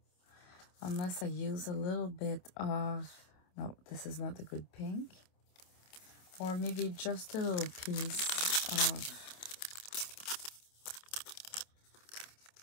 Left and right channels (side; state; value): right; late; 27 ms